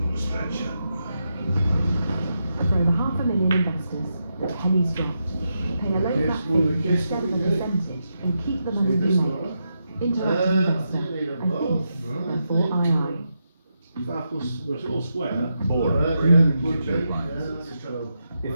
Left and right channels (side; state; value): both; inverted; correlation -0.85